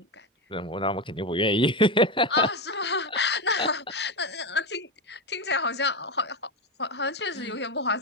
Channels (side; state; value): both; normal; correlation 0.14